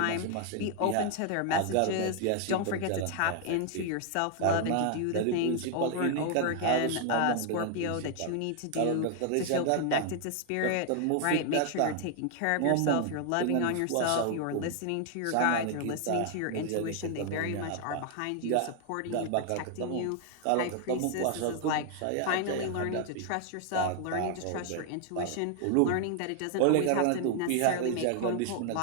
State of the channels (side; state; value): both; different; correlation 0.00